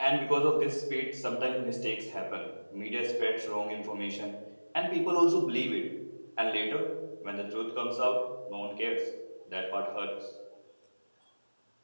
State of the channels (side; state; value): both; inverted; correlation -1.00